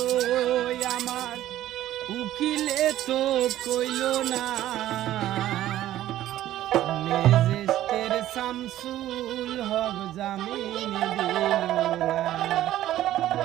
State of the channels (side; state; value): left; quieter; 13.6 dB